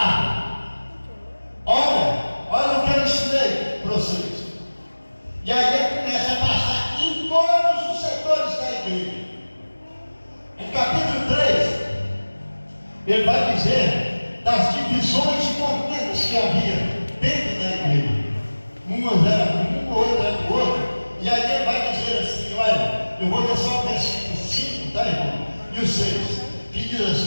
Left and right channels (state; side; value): inverted; both; correlation -1.00